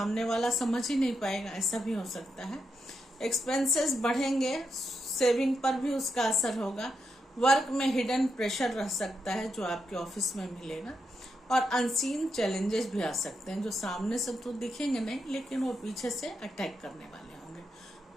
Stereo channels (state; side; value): normal; both; correlation 0.84